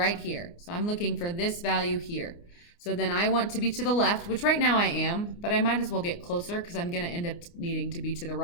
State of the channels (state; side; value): late; right; 29 ms